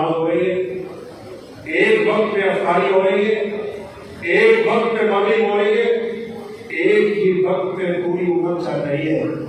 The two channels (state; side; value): identical; both; correlation 1.00